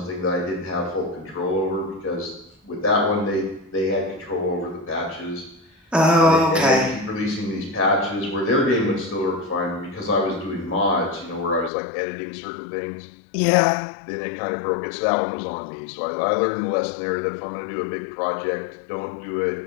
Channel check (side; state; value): right; drops out; at 11.7 s